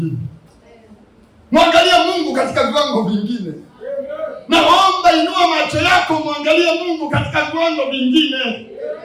Mwangalie Mungu katika viwango vingine. Naomba inua macho yako, mwangalie Mungu katika viwango vingine.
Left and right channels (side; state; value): both; identical; correlation 1.00